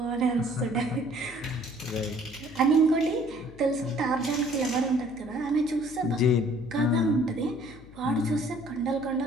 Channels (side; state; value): left; noise; hum, 20 dB below the sound